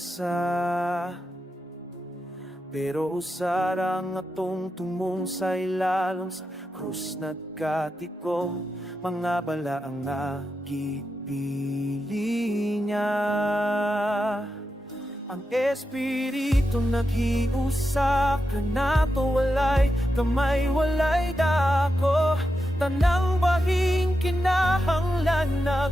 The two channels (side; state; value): both; normal; correlation 0.88